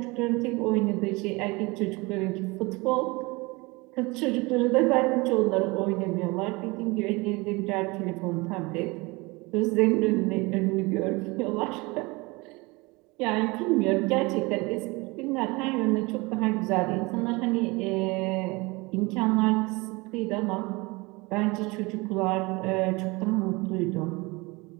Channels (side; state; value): left; quieter; 24.8 dB